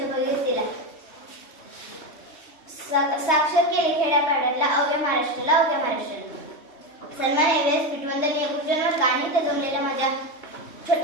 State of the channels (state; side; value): late; right; 3.2 ms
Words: भगीरथीला. साक्षर केले खेड्यापाड्यातला अवघ्या महाराष्ट्राला अवघ्या महाराष्ट्राला. सन्मान एव्हरेस्ट पिटवंदनीय गुरुजनवर्ग आणि इथे जमलेल्या माझ्या